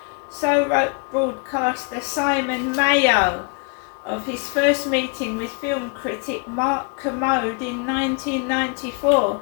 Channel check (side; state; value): right; quieter; 33.1 dB